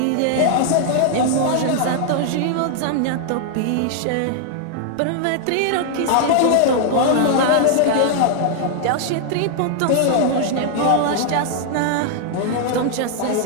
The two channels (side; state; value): both; different; correlation 0.00